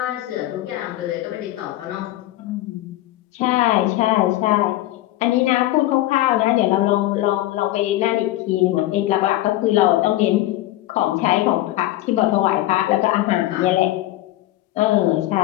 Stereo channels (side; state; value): right; quieter; 15.7 dB